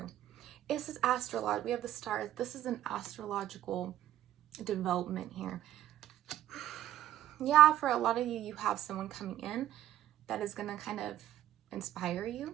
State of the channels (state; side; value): quieter; left; 12.5 dB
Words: This is astrological. We have the stars. This is an astrological development here. Yeah, for a lot of you, you have someone coming in that is going to kind of inspire you.